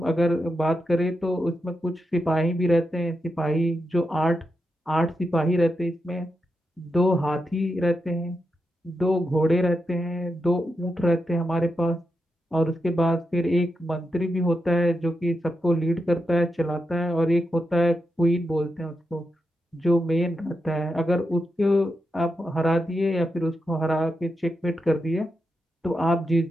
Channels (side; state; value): both; normal; correlation 0.86